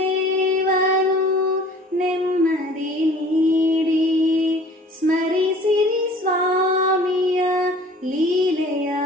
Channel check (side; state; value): both; normal; correlation 0.49